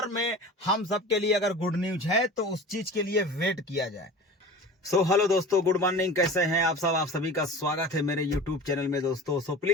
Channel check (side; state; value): both; normal; correlation 0.37